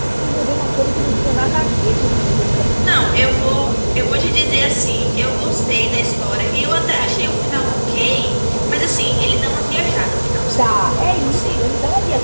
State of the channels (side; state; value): both; inverted; correlation -1.00